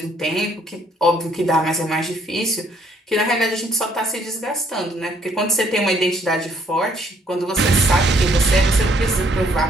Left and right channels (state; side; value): normal; both; correlation 0.66